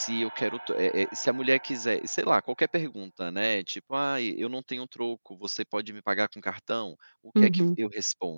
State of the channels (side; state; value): both; inverted; correlation -1.00